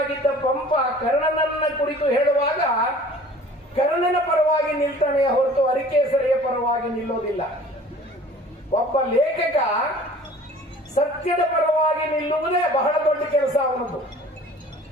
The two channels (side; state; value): both; normal; correlation 0.47